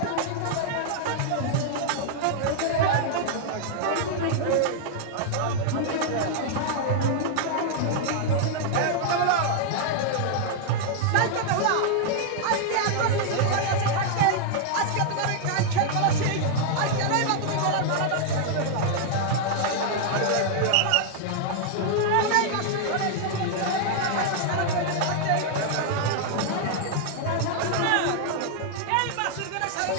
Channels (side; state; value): both; different; correlation 0.00